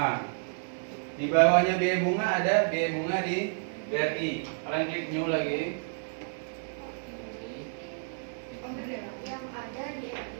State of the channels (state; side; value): silent; left; digital silence